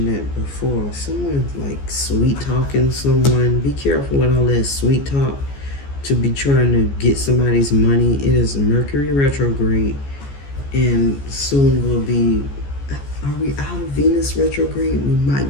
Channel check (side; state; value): right; late; 14 ms